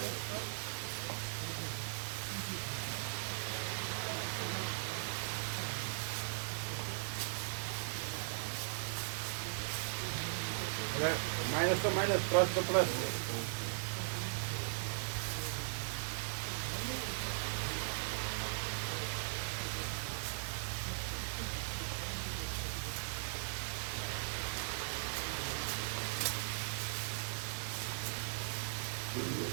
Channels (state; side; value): silent; left; digital silence